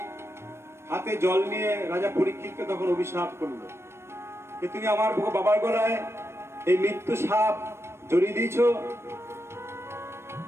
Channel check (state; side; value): late; left; 0.12 ms